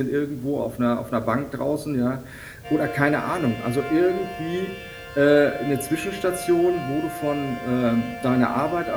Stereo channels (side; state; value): both; identical; correlation 1.00